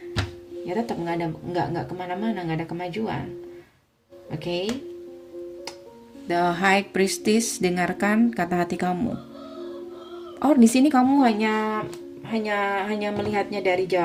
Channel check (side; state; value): both; identical; correlation 1.00